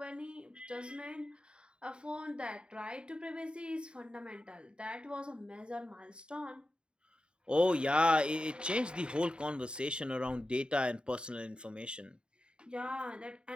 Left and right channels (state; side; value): late; left; 0.052 ms